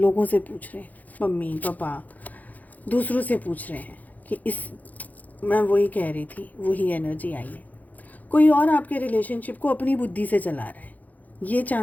से पूछ रहे हैं, मम्मी पापा, दूसरों से पूछ रहे हैं कि इस मैं वही कह रही थी, वही एनर्जी आई है। कोई और आपके रिलेशनशिप को अपनी बुद्धि से चला रहा है, ये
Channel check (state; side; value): late; right; 0.080 ms